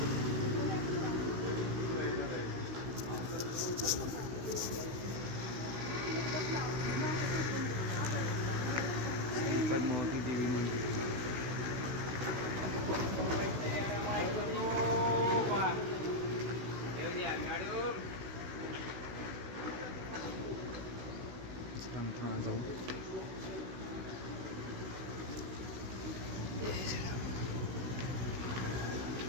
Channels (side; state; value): left; late; 16 ms